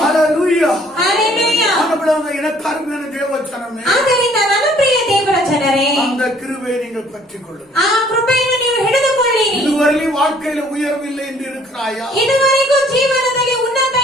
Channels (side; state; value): both; normal; correlation 0.59